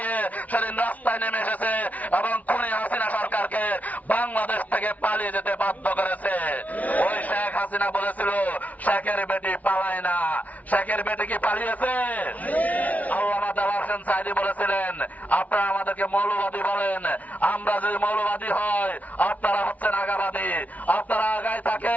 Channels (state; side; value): late; right; 0.072 ms